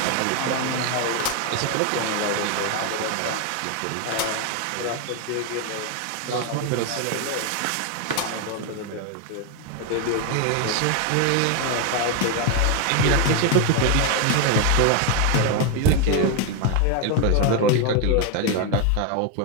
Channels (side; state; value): both; different; correlation 0.01